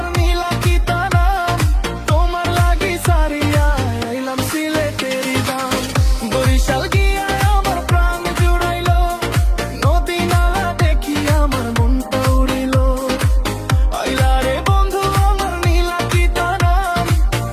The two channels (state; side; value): identical; both; correlation 1.00